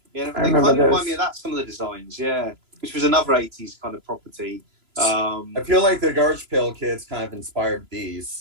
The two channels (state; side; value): late; left; 3.0 ms